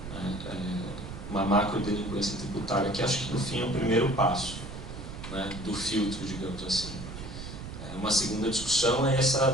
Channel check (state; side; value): noise; right; rumble, 10 dB below the sound